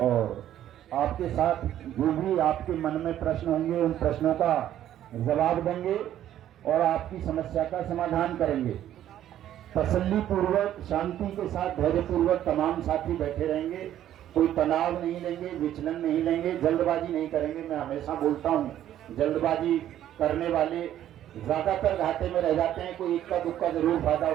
और आपके साथ जो भी आपके मन में प्रश्न होंगे उन प्रश्नों का जवाब देंगे और आपकी समस्या का समाधान करेंगे। तसल्ली पूर्वक, शांति के साथ, धैर्य पूर्वक तमाम साथी बैठे रहेंगे। कोई तनाव नहीं लेंगे, विचलन नहीं लेंगे, जल्दबाजी नहीं करेंगे। मैं हमेशा बोलता हूँ, जल्दबाजी करने वाले ज्यादातर घाटे में रह जाते हैं। कोई इक्का दुक्का जरूर फायदा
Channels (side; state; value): left; quieter; 11.7 dB